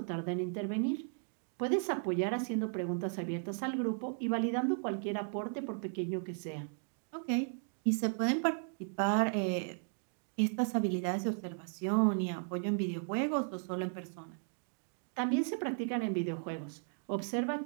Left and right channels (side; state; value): left; silent; 54 dB below the other